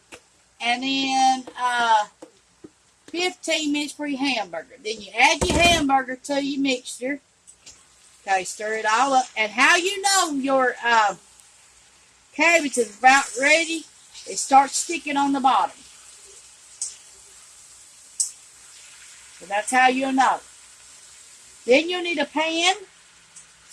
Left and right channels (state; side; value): identical; both; correlation 1.00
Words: And then 15 minutes for your hamburger. Then you add your hamburger to your mixture. Okay, stir it all up. And how you know your cabbage is about ready, it starts sticking on the bottom. So that's how you'll know. Then you'll need a pan.